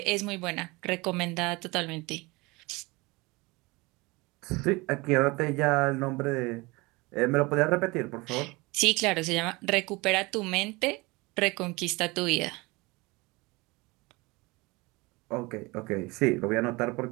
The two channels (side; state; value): left; quieter; 24.2 dB